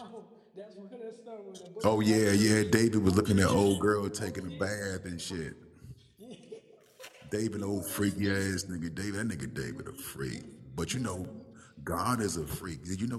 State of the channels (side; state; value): both; identical; correlation 1.00